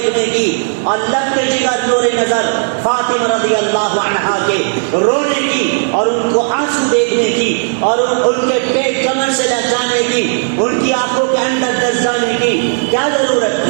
کی اور لگتے جگر نور نظر فاطمہ رضی اللہ عنہا کے رونے کی اور ان کو آنسو دیکھنے کی اور ان کے پیٹ کمر سے لہجانے کی، ان کی آنکھوں کے اندر دس جانے کی کیا ضرورت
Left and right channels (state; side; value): silent; left; digital silence